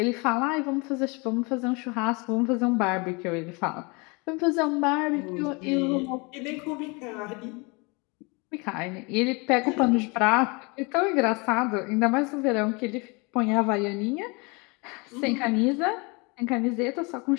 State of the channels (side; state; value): right; quieter; 29.0 dB